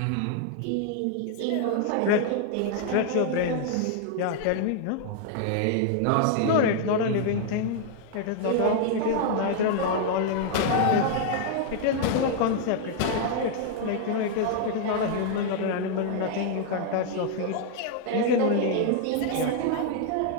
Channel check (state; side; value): different; both; correlation 0.00